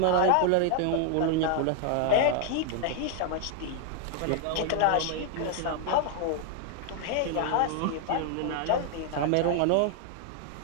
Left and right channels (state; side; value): different; both; correlation 0.00